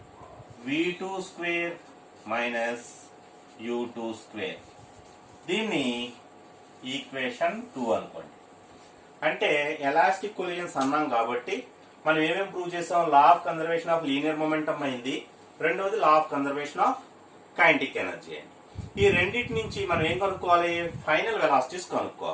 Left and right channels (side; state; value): both; identical; correlation 1.00